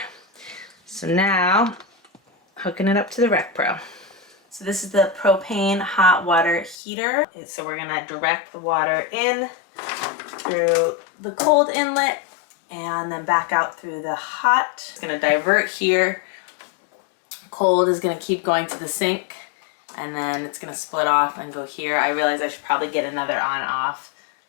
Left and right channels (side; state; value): right; drops out; at 6.8 s